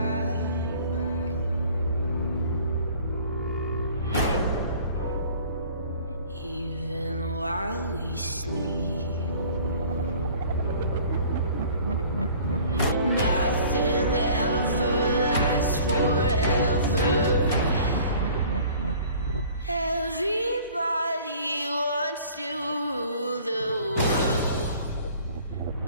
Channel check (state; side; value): inverted; both; correlation -0.50